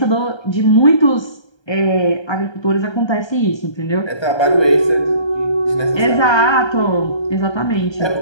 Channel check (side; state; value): right; late; 1.3 ms